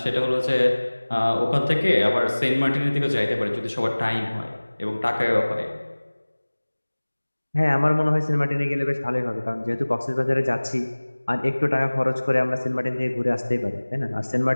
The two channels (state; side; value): inverted; both; correlation -1.00